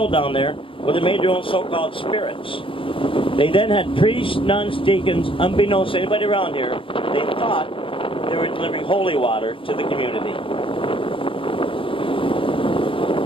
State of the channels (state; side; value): late; right; 0.25 ms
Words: down there where they made their own so-called spirits. They then had priests, nuns, deacons, unbeknownst to anybody around here, they thought they were delivering holy water to the community.